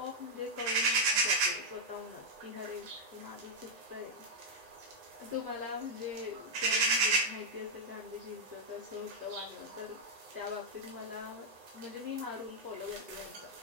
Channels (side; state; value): left; late; 8.0 ms